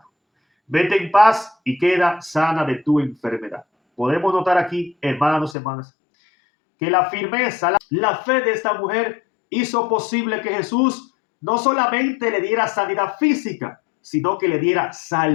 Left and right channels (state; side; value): drops out; right; at 5.6 s